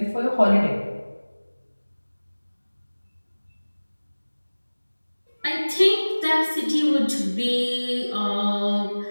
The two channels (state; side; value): inverted; both; correlation -1.00